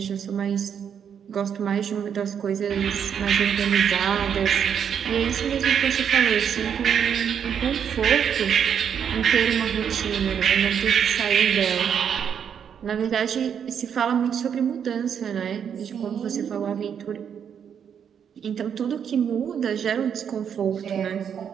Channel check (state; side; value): quieter; left; 8.0 dB